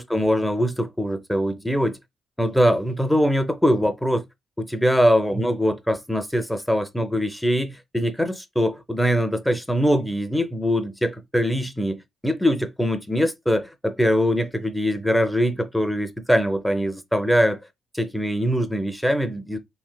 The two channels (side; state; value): both; normal; correlation 0.91